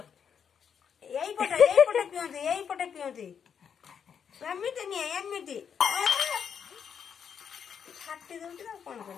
এইপটে পিଅନ୍ତି ଏମିତି ନିଏ ଏମିତି ଛାଟି ଦଉଛି ନା କଣ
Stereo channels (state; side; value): quieter; right; 7.4 dB